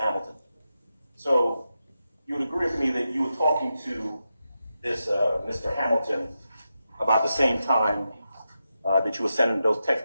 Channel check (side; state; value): both; inverted; correlation -0.88